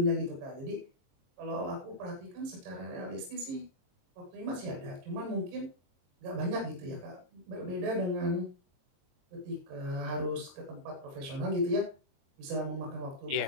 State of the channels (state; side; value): late; left; 22 ms